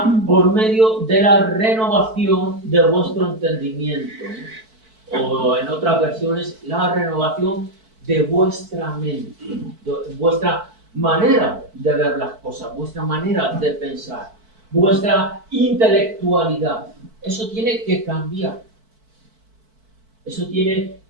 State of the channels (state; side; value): late; left; 4.5 ms